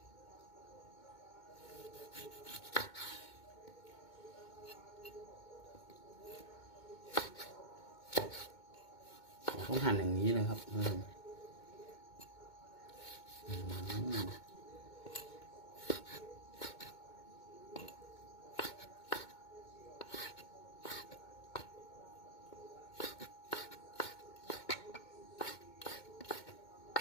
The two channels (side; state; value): right; late; 2.2 ms